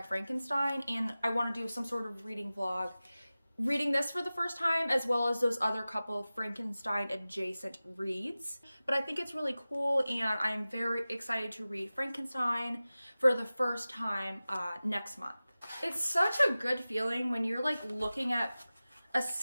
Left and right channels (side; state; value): both; inverted; correlation -0.97